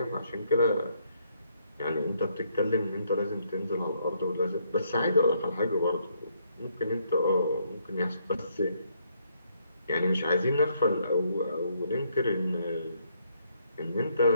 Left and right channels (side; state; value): both; inverted; correlation -0.71